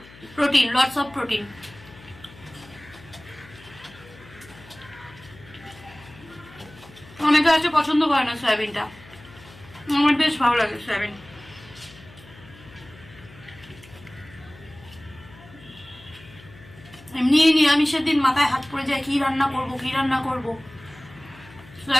প্রোটিন, লটস অফ প্রোটিন। অনেকে আছে পছন্দ করে না সয়াবিনটা, আমার বেশ ভালো লাগে সয়াবিন। এমনি নিরামিষের দিন মাথায় হাত পড়ে যায়, কি রান্না করব।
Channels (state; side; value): noise; left; hum, 21 dB below the sound